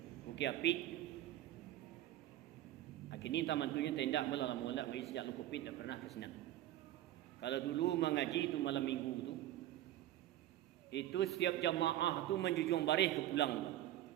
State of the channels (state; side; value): quieter; left; 13.7 dB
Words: Bukit Apit. Kini taman tunya tenda mula-mula ngaji sejak lu Covid tak pernah ke sana. Kalau dulu mengaji tu malam minggu tu, itu setiap jamaah tu menjunjung barih ke pulang.